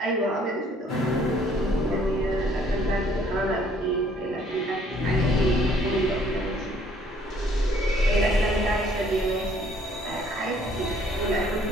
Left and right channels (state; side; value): normal; both; correlation 0.61